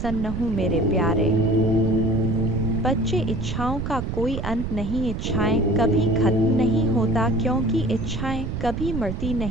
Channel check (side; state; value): right; noise; rumble, 4 dB below the sound